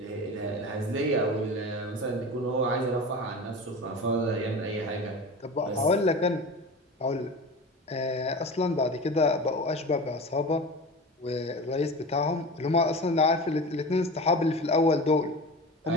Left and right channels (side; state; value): both; normal; correlation 0.31